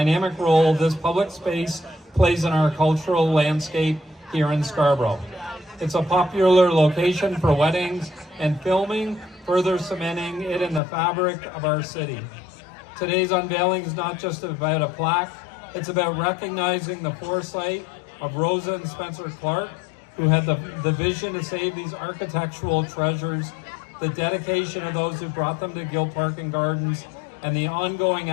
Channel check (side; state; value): right; drops out; at 10.8 s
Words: role this public space plays in our cultural landscape here in Scarborough. It's a popular location for weddings and filming, further cementing it in the fabric of our city. Today's unveiling is not just about a plaque, it's about recognizing the foresight of Rosa and Spencer Clark, who had the vision to save these architectural treasures, the dedication of those who brought them to Guild Park and Gardens, and the ongoing